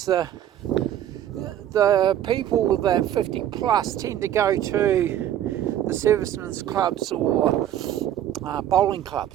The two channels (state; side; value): quieter; left; 11.4 dB